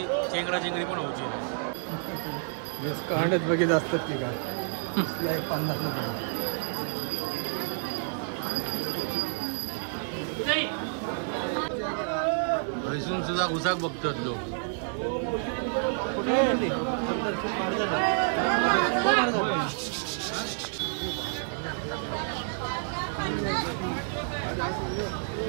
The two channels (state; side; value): silent; left; 58 dB below the other